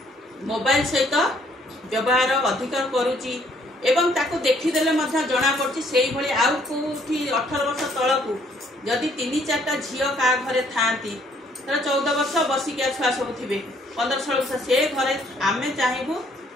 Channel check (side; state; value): both; normal; correlation 0.65